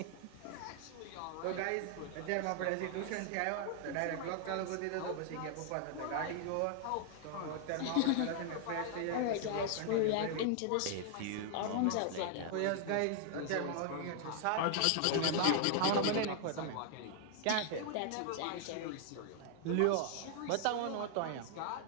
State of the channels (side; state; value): both; different; correlation 0.00